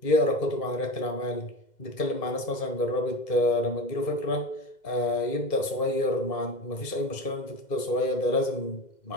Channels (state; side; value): late; right; 2.0 ms